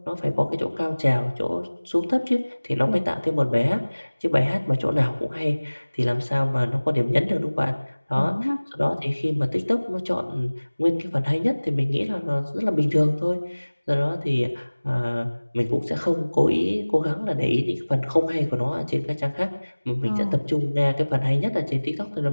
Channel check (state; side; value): inverted; both; correlation -1.00